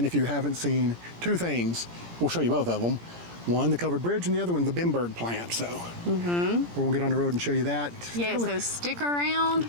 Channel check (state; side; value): late; left; 17 ms